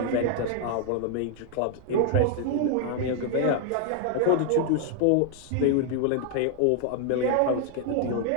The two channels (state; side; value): different; both; correlation 0.00